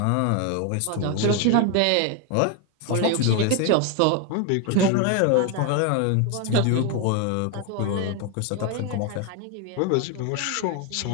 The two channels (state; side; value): different; both; correlation 0.01